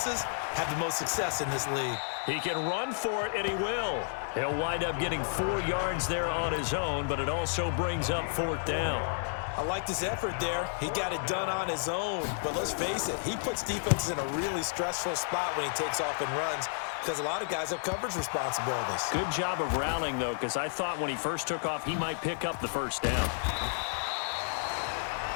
have the most success in this league. He can run for it, and he will. He'll wind up getting 4 yards there on his own, but it also brings up 4th down. I liked his effort there. He got it done on his own. But let's face it, he puts defenses in a really stressful spot when he takes off and runs because a lot of guys have coverage responsibilities. Good job of rallying, though, because I thought when he first took off, he might pick up the first down.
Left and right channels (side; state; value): right; silent; digital silence